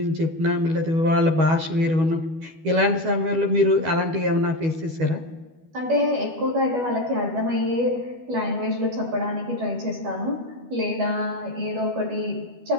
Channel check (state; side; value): late; left; 12 ms